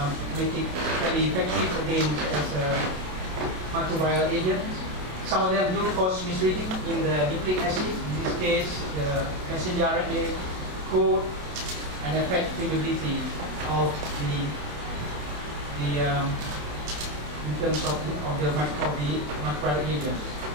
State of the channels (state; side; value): late; left; 27 ms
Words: make it very effective against as a microbial agent. Some of them do cause misreading in the nucleic acid. In this case, the messenger RNA code, and affect permeability of in terms of the microbial agent.